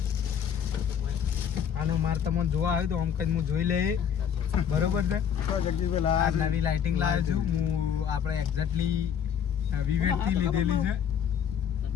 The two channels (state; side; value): quieter; right; 8.3 dB